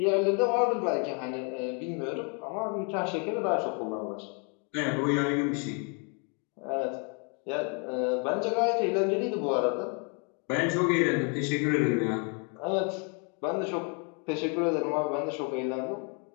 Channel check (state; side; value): quieter; right; 36.9 dB